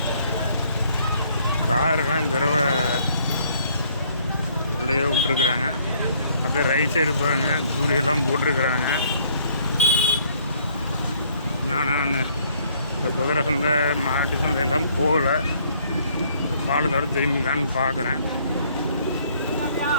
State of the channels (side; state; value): both; inverted; correlation -0.64